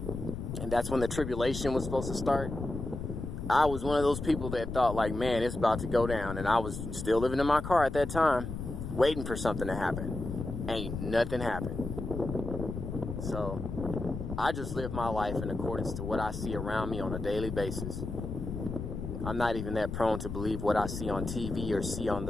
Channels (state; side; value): noise; left; rumble, 6 dB below the sound